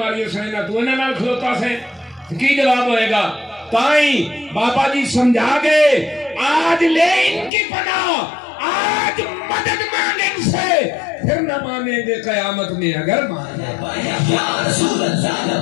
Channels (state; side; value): drops out; right; at 7.5 s